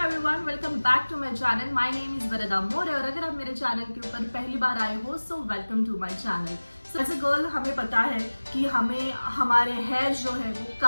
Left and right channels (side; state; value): both; inverted; correlation -1.00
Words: welcome back to my channel. My name is Varda More और अगर आप मेरे चैनल के ऊपर पहली बार आए हो so welcome to my channel. So as a girl हमें पता है कि हमें हमारे हेयर जो है वो